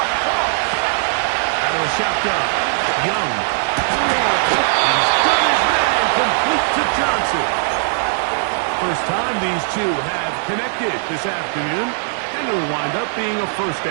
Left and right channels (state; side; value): silent; left; 65 dB below the other